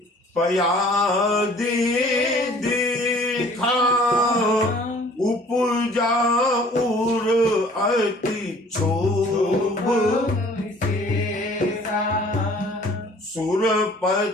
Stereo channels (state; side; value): normal; both; correlation 0.53